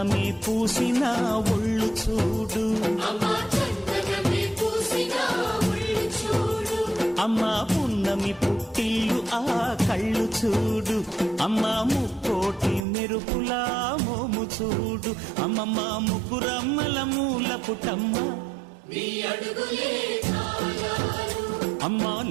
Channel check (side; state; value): left; drops out; at 12.8 s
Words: పూసిన ఒళ్ళు చూడు, అమ్మా పున్నమి పుట్టిల్లు ఆ కళ్ళు చూడు, అమ్మా ముక్కోటి మెరుపులా మోము చూడు, అమ్మమ్మ ముగ్గురమ్మల మూల పుటమ్మ అమ్మా